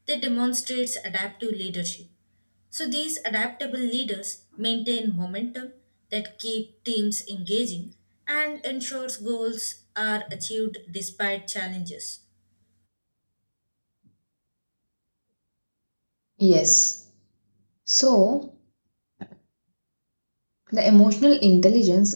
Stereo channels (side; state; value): both; inverted; correlation -1.00